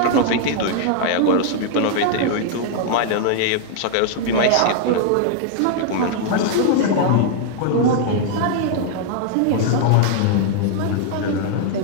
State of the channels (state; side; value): different; both; correlation 0.00